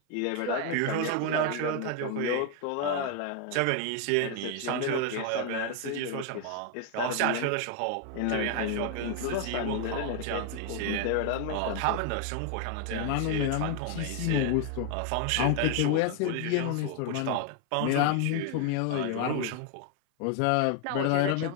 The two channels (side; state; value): both; different; correlation 0.01